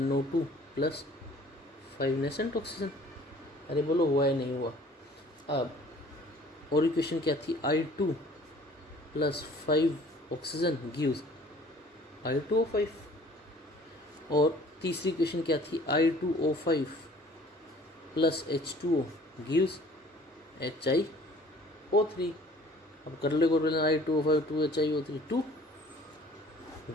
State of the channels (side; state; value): both; normal; correlation 0.52